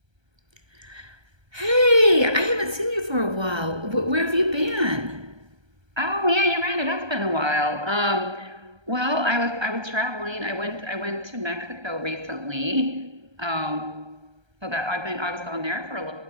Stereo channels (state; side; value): late; left; 1.3 ms